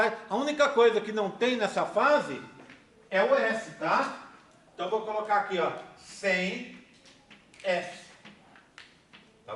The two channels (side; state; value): both; identical; correlation 1.00